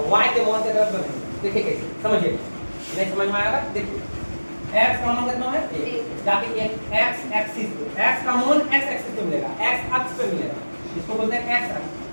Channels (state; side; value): inverted; both; correlation -1.00